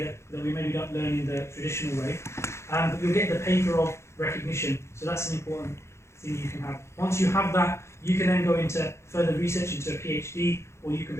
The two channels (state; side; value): late; right; 0.13 ms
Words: that we maybe don't learn in the traditional way, but you'll get the paper of recognition, so that's an important thing you can have. Once you have that, you can then go into further research into a PhD, or you can